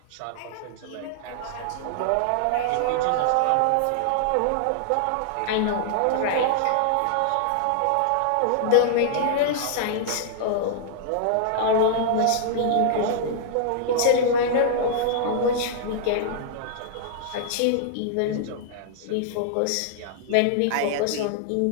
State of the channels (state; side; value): different; both; correlation -0.01